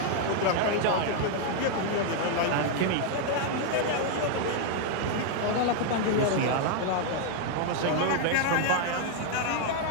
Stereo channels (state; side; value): different; both; correlation 0.00